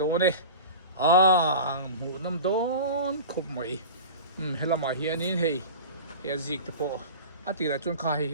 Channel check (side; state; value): both; inverted; correlation -0.33